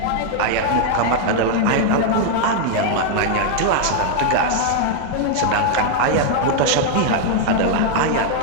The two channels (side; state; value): both; different; correlation 0.00